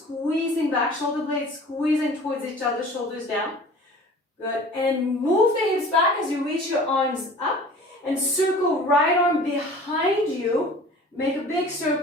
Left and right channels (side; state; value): both; normal; correlation 0.44